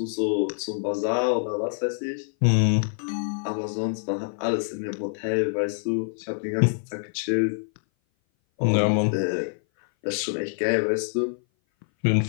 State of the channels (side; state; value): right; silent; 58 dB below the other